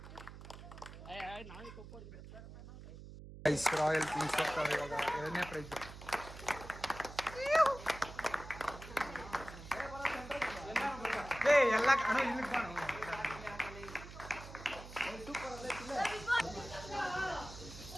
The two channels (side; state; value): right; noise; hum, 14 dB below the sound